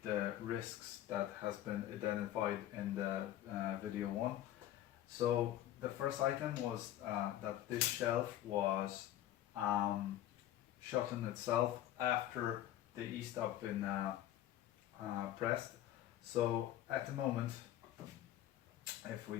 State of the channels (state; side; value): quieter; right; 12.9 dB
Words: the risks that has been identified in the video 1. So the first item was that this shelf was shut in itself after the e-stop been pressed. So at the moment, if we